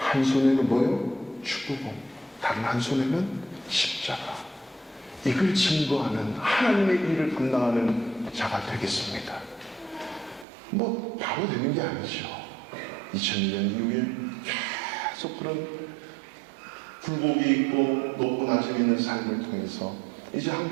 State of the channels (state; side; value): drops out; left; at 10.5 s